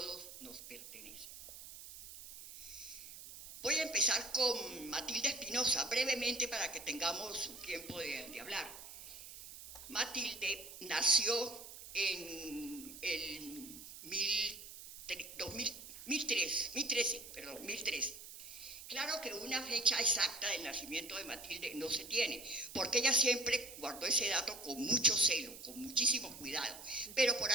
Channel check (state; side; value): noise; right; hiss, 13 dB below the sound